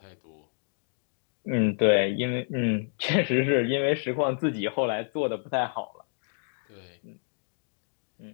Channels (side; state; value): right; silent; 57 dB below the other